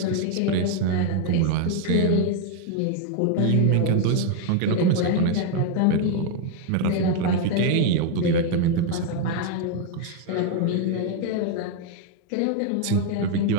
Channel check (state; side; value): different; both; correlation 0.01